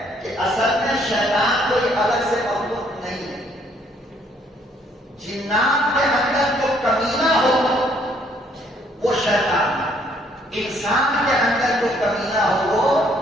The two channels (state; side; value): normal; both; correlation 0.65